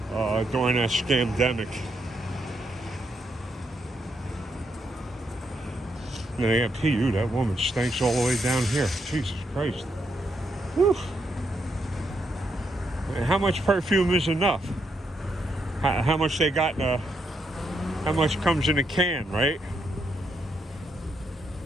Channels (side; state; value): both; normal; correlation 0.78